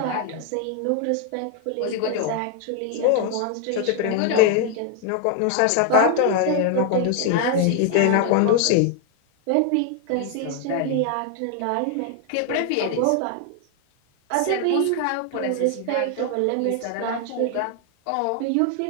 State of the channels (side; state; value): both; different; correlation 0.00